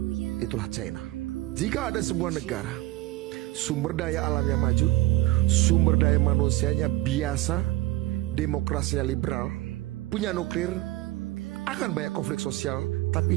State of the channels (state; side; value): quieter; left; 17.5 dB